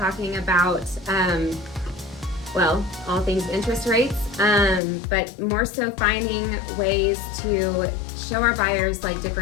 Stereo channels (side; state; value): right; drops out; at 4.8 s